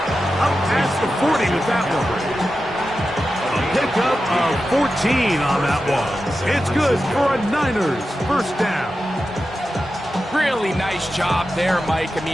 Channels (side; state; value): both; normal; correlation 0.91